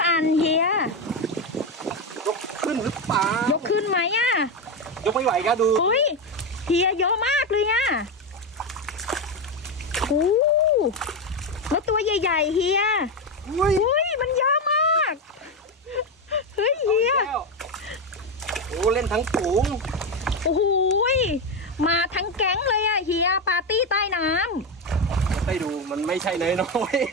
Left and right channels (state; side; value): normal; both; correlation 0.12